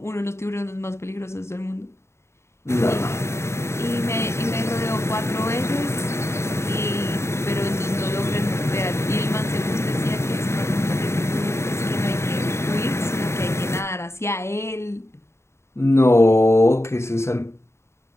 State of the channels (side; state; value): right; late; 0.13 ms